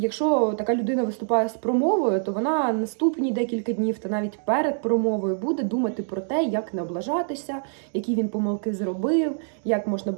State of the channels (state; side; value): silent; left; digital silence